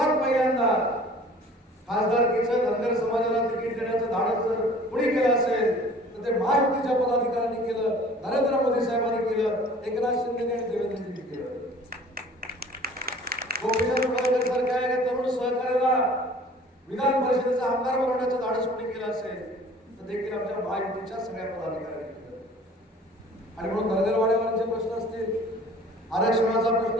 पहिल्यांदा खासदारकीचं धनगर समाजाला तिकीट देण्याचं धाडस जर कुणी केलं असेल तर ते महायुतीच्या पदाधिकाऱ्यांनी केलं, नरेंद्र मोदी साहेबांनी केलं, एकनाथ शिंदे आणि देवेंद्रजींनी केलं. गोपीचंद पडळकर सारख्या तरुण सहकार्याला विधान परिषदेचा आमदार बनवण्याचं धाडस कोणी केलं असेल तर देखील आमच्या महायुतीच्या सगळ्या पदाधिकाऱ्यांनी केलं. आणि म्हणून धनगरवाड्यावरचे प्रश्न असतील, आरक्षणाचा प्रश्न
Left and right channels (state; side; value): normal; both; correlation 0.48